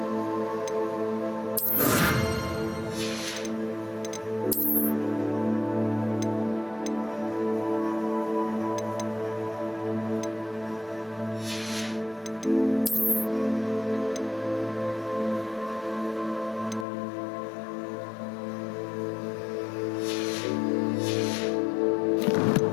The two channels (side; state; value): right; drops out; at 16.9 s